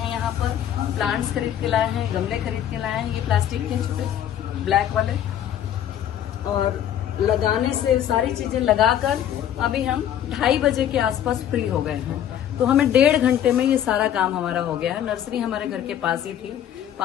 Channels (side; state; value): right; quieter; 10.5 dB